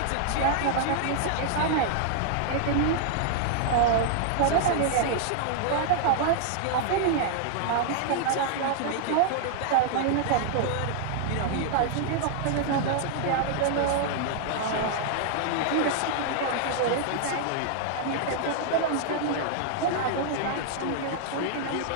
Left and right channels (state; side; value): different; both; correlation -0.01